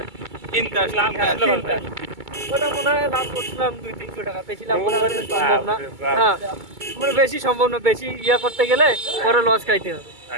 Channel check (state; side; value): late; left; 2.3 ms